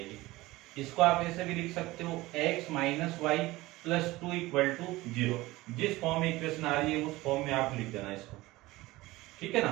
इसको आप ऐसे भी लिख सकते हो, x minus y plus 2 equal to 0। जिस फॉर्म में इक्वेशन आ रही है उस फॉर्म में आप लिख देना इसको, ठीक है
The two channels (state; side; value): quieter; left; 19.2 dB